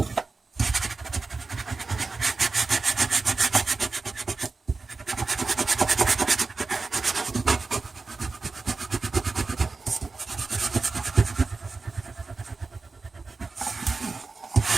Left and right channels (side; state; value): left; quieter; 4.0 dB